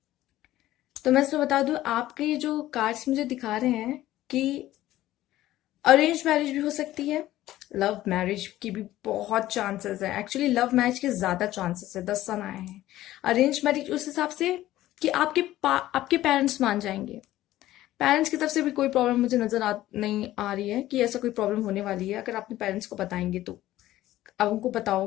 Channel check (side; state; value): right; quieter; 14.9 dB